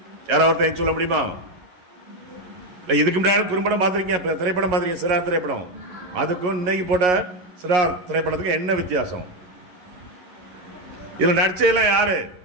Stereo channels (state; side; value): late; left; 11 ms